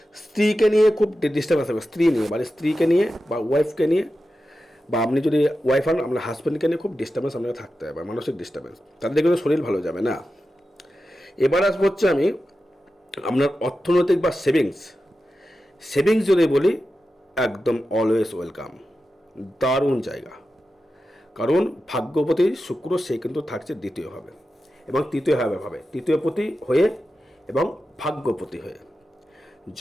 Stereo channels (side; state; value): both; normal; correlation 0.92